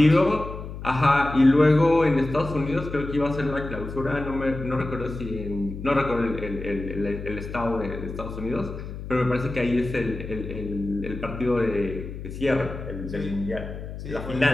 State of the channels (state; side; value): noise; left; hum, 9 dB below the sound